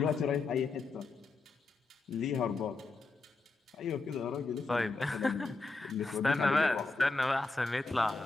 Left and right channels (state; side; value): quieter; right; 3.7 dB